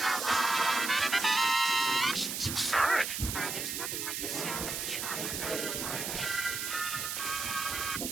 Sorry. There's nothing like the sound of chocolate on the march.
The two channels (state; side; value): noise; right; hiss, 3 dB below the sound